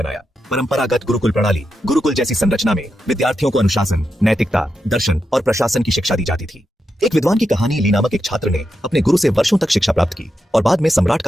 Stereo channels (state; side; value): normal; both; correlation 0.86